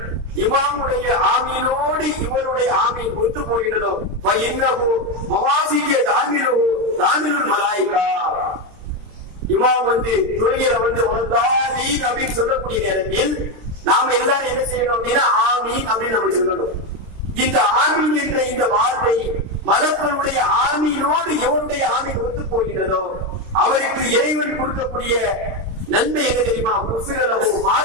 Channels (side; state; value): left; late; 26 ms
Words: இமாமுடைய ஆமீனோடு இவருடைய ஆமீன் ஒத்து போகின்றதோ இன்னஹு மவாசிய தாமிருல் மலாயிகா, இமாம் வந்து தொழுகையில வந்து வலதாலீன் அப்படின்னு சொல்லக்கூடிய நேரத்தில் நாம எல்லாரும் என்ன செய்யணும் அப்படின்னா ஆமீன் அப்படின்னு நம்ம சொல்லணும். இந்த ஆமீன் என்ற இந்த வார்த்தை மலக்களுடைய ஆமீனோடு எவருடைய ஆமீன் ஒத்து போகிறதோ அவருக்கு இறைவன் கொடுக்கக்கூடிய நன்மை என்ன தெரியுமா? குஃபிரலஹு